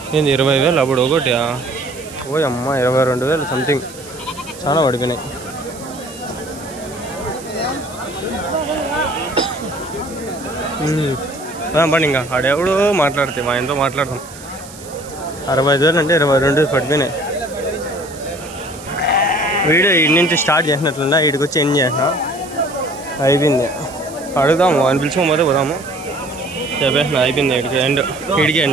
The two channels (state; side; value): noise; right; hiss, 17 dB below the sound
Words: ఏంది 20,000 అప్పుడు ఒకటి? ఓ అమ్మ 22,000 సంథింగ్ చాలా పడిపోయినాయి. పని ఇంకా ఆడెవడు మాట్లాడితే మా ఇంట్లో మాట్లాడతాం. 65,000 అంటే 22 పడిపోయినాయి. వీడియో ఇటు నుంచి స్టార్ట్ చేసినట్లున్నా ఇటుకు వచ్చి ఎండ్ చేసిన అయిపోయింది. అడుగుదాము అని పిలుచుకోకపోతే పోదాము. చెప్పేసిన అయిపోయింది. ఇడికి